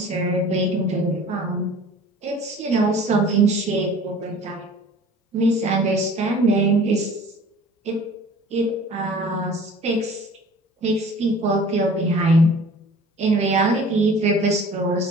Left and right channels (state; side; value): normal; both; correlation 0.46